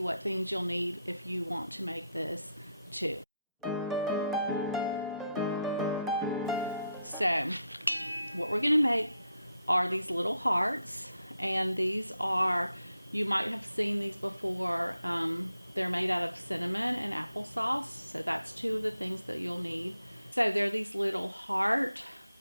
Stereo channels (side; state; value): both; inverted; correlation -0.81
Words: what things you'll need if you want to make this too. So what we're going to make are these little hearts, and these are, you might have seen these before. They're made out of cinnamon and applesauce, so that's two of the things that you'll need. So they're these little heart